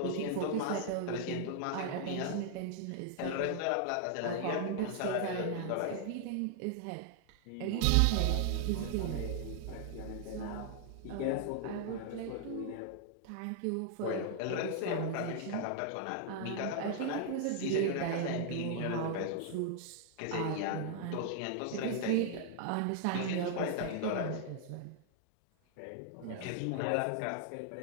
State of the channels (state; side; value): different; both; correlation -0.01